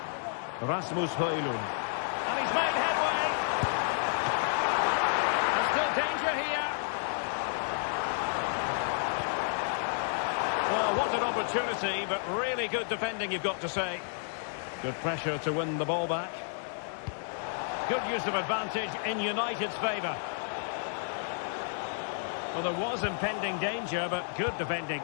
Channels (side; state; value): right; silent; digital silence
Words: Rasmus Højlund. And he's made headway. There's still danger here. Well, what an opportunity, but really good defending, you've got to say. Good pressure to win the ball back. Good use of advantage in United's favour. Well, there was impending danger, but good defending.